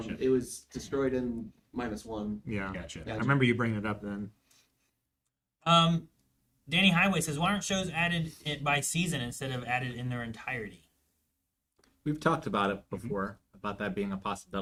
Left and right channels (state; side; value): identical; both; correlation 1.00